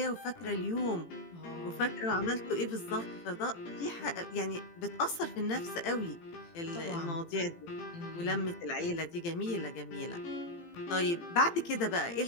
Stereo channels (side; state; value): right; late; 18 ms